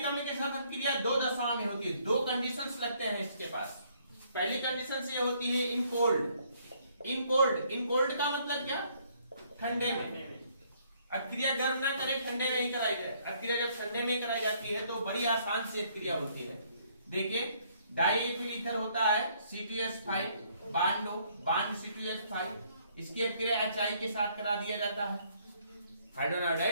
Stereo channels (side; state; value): both; inverted; correlation -0.66